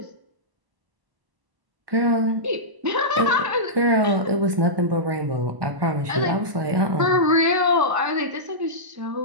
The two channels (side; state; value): left; late; 1.0 ms